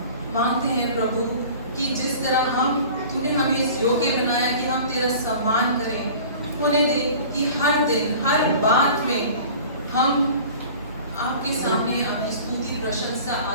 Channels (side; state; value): both; inverted; correlation -0.43